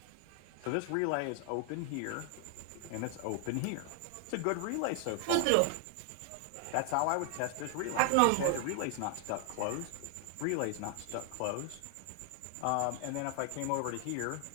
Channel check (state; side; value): different; both; correlation 0.00